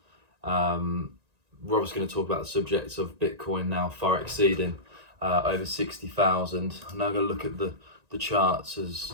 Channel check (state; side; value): late; left; 1.9 ms